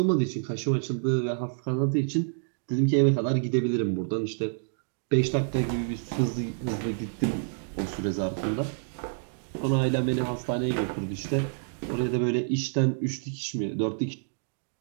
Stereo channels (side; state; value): left; silent; digital silence